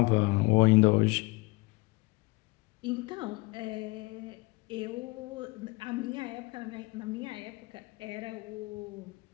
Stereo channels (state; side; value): quieter; right; 25.1 dB